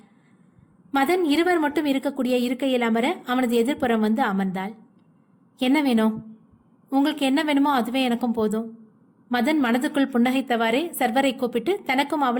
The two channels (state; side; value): identical; both; correlation 1.00